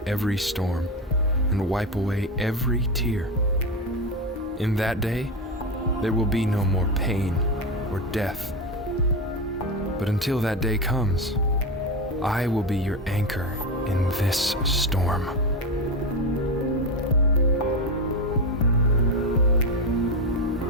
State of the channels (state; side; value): normal; both; correlation 0.16